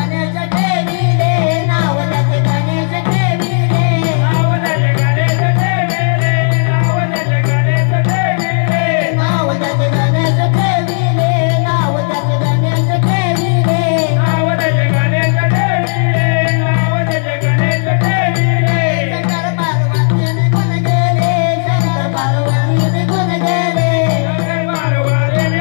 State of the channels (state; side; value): silent; right; digital silence